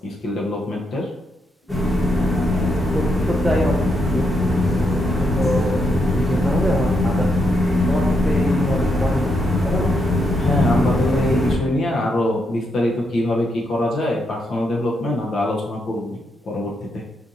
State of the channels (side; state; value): both; normal; correlation 0.80